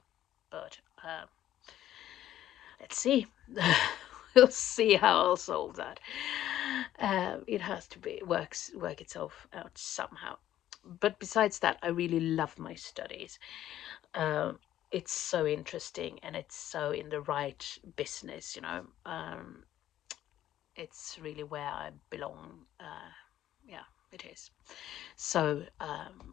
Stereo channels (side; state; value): right; quieter; 12.5 dB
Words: But let's see. We'll see how I'll solve that. It has to work itself out somehow. But besides that, I really love my studies. It's so interesting, and it's so in the right business, it's really where I belong. Yeah, it is. So